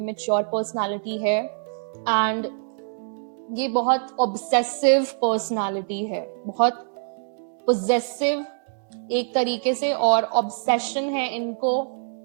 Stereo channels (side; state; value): left; silent; digital silence